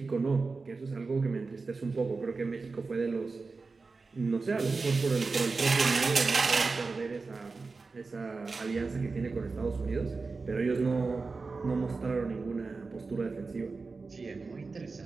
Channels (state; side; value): quieter; left; 4.1 dB